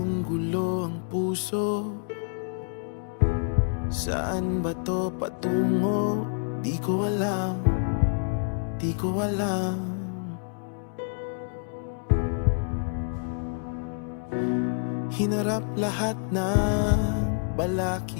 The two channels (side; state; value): right; silent; digital silence